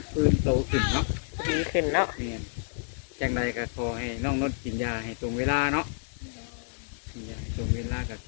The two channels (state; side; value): silent; right; digital silence